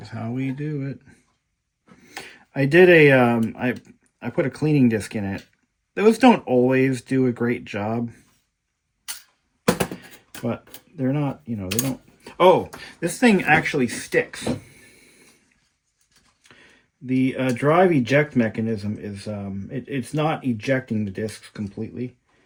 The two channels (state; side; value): identical; both; correlation 1.00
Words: how we do it. I did I put a cleaning disc in it. Those don't always do a great job, but they're not, they don't. Oh, this thing actually sticks. The drive eject mechanism is it's not ejecting the discs completely.